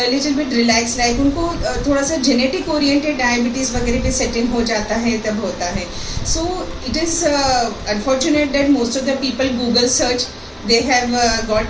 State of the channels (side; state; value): both; identical; correlation 1.00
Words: little bit relaxed life. उनको थोड़ा सा genetic oriented diabetes वगैरह पे set in हो जाता है, तब होता है. So it is unfortunate that most of the people Google search, they have got